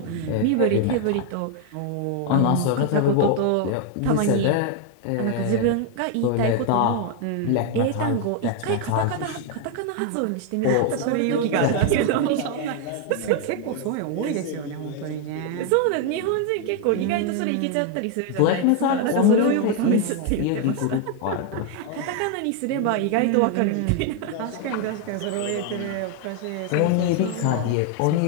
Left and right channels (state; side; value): different; both; correlation 0.00